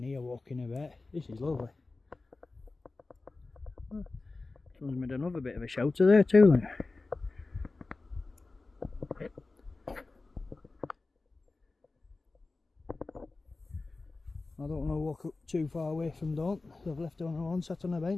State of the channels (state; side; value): quieter; right; 3.5 dB